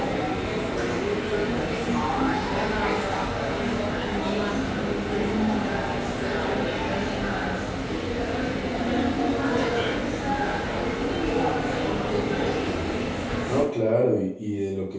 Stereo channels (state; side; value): identical; both; correlation 1.00